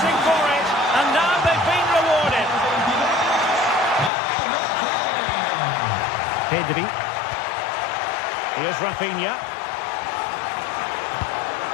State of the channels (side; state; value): right; drops out; at 4.1 s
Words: for it, and now they've been rewarded. Pedri. Here's Rafinha.